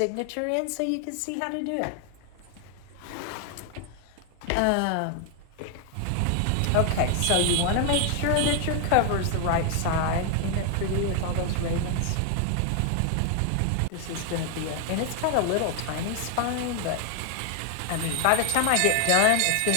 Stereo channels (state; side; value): different; both; correlation 0.00